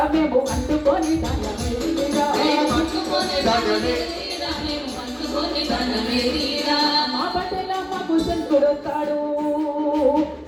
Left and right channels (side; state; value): both; identical; correlation 1.00